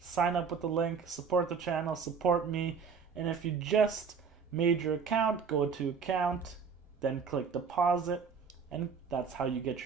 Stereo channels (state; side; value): quieter; left; 5.9 dB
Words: up with the link, support the channel, support me. And if you just made your account, go to account, then click deposit, and that's how you get